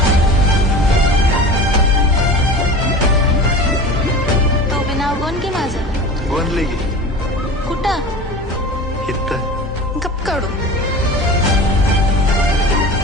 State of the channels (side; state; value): both; normal; correlation 0.35